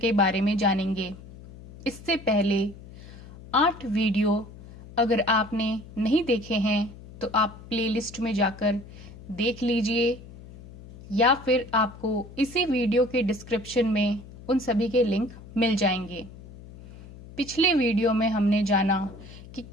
बारे में जानेंगे। इससे पहले 8 वीडियो अगर आपने नहीं देखे हैं तो आप प्लेलिस्ट में जाकर देख लीजिए या फिर आपको इसी वीडियो के डिस्क्रिप्शन में उन सभी के लिंक मिल जाएंगे। पिछले वीडियो में हमने जाना कि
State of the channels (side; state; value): left; noise; hum, 17 dB below the sound